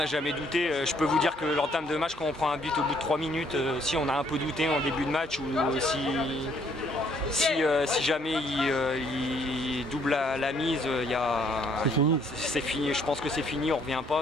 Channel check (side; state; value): both; normal; correlation 0.65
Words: jamais douté, je peux vous dire que l'entame de match, quand on prend un but au bout de 3 minutes, si on a un peu douté en début de match ou si jamais il double la mise, c'est fini. Je pense que c'est fini, on ne revient